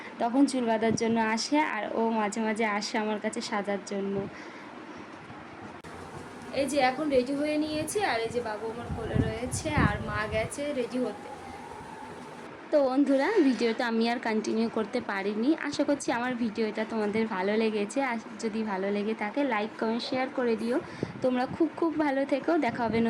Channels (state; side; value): identical; both; correlation 1.00